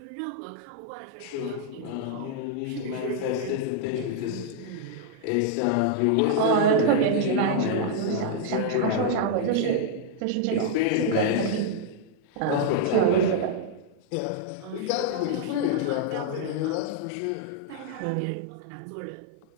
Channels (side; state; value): both; different; correlation -0.01